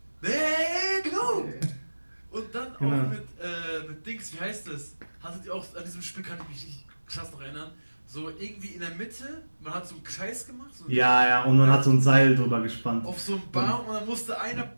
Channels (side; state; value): both; inverted; correlation -1.00